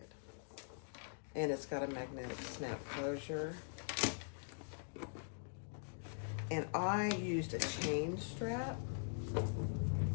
And it's got a magnetic snap closure. And I used a chain strap,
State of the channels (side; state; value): right; silent; digital silence